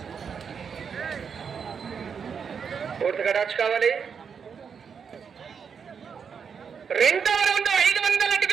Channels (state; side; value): quieter; left; 6.5 dB